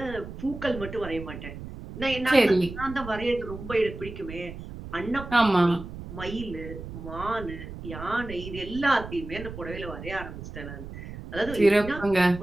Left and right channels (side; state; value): right; noise; rumble, 11 dB below the sound